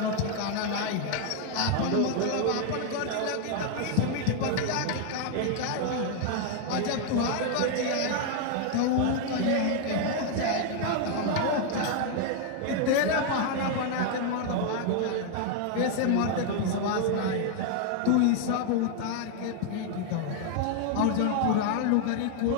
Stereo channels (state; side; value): different; both; correlation 0.00